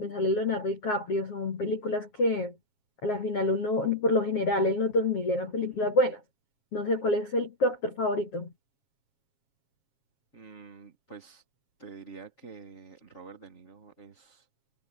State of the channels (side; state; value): right; late; 7.3 ms